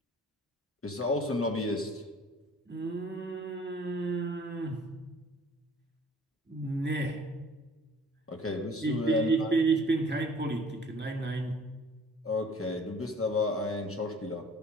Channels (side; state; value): both; normal; correlation 0.52